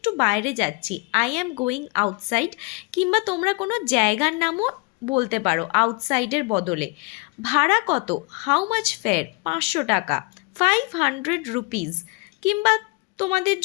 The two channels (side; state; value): right; quieter; 27.5 dB